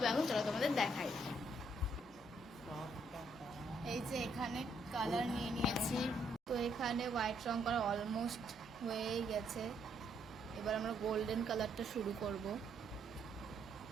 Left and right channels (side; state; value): both; normal; correlation 0.72